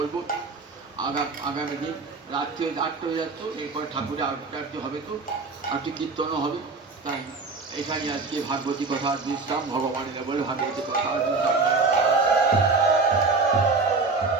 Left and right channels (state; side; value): quieter; left; 4.1 dB